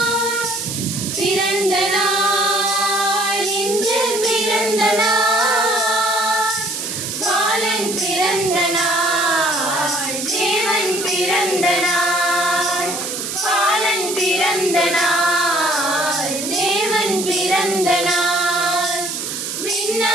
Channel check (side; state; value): right; noise; hiss, 5 dB below the sound